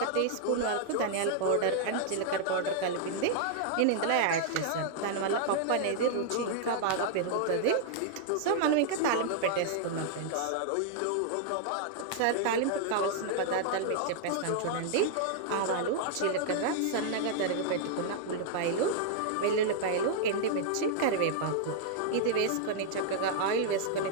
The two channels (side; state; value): both; different; correlation -0.01